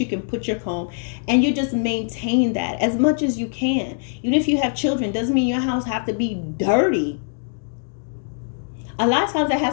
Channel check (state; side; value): silent; right; digital silence